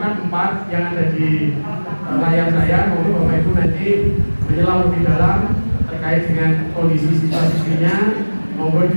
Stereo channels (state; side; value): inverted; both; correlation -1.00